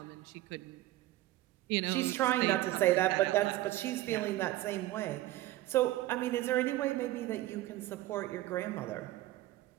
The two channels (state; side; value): quieter; left; 16.0 dB